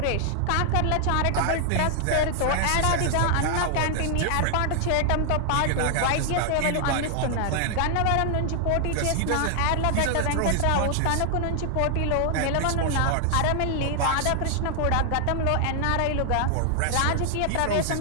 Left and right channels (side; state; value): both; different; correlation 0.00